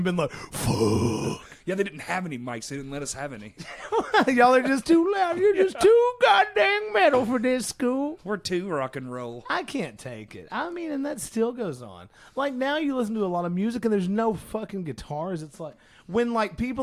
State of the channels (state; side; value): identical; both; correlation 1.00